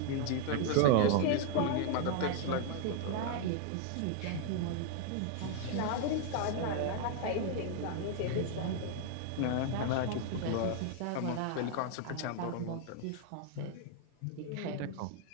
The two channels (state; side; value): different; both; correlation 0.00